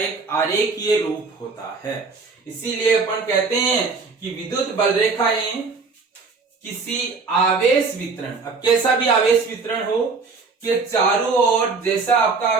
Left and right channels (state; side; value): quieter; left; 4.4 dB